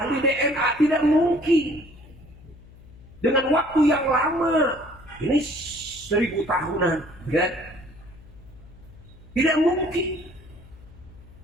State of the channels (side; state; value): left; noise; hum, 21 dB below the sound